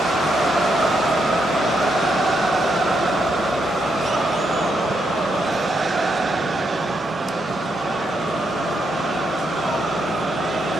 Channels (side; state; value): both; normal; correlation 0.79